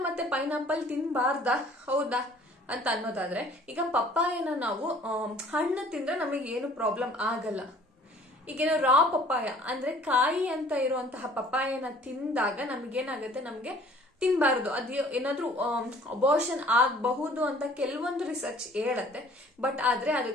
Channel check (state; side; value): normal; both; correlation 0.53